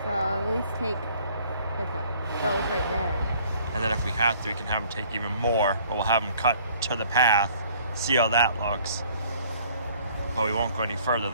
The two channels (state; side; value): inverted; both; correlation -0.57